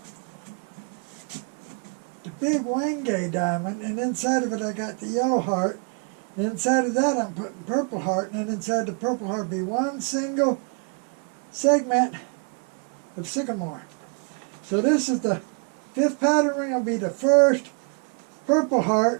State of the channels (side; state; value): left; quieter; 39.8 dB